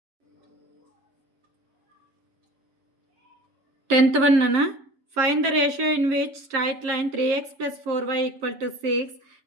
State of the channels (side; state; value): left; late; 7.5 ms